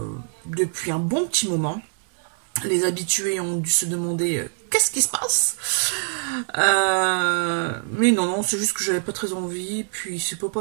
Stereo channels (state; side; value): silent; left; digital silence